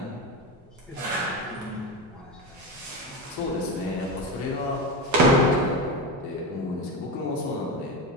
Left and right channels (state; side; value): normal; both; correlation 0.19